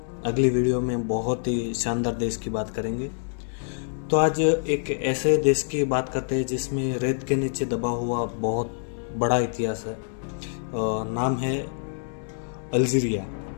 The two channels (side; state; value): right; silent; 61 dB below the other